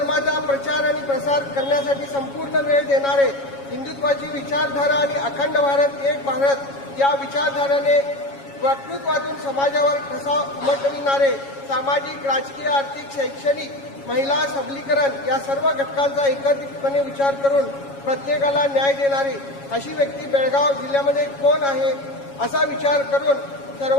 प्रचार आणि प्रसार करण्यासाठी संपूर्ण वेळ देणारे, हिंदुत्वाची विचारधारा आणि अखंड भारत एक भारत या विचारधारेने वक्तृत्वातून समाजावर ठसा उमटविणारे, सामाजिक, राजकीय, आर्थिक, शैक्षणिक, महिला सबलीकरण या सर्व घटकांचा एकत्रितपणे विचार करून प्रत्येकाला न्याय देणारी अशी व्यक्ती बेळगाव जिल्ह्यामध्ये कोण आहे असा विचार करून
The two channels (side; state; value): right; late; 7.2 ms